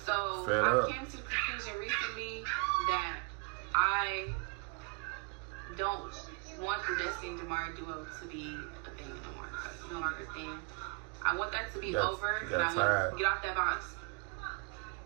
So I came to the conclusion recently that I don't want the Destiny and Jamari duo to be a thing no more. It's no longer a thing. I want that to be over, and I want to get off that box.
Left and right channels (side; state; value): left; quieter; 34.0 dB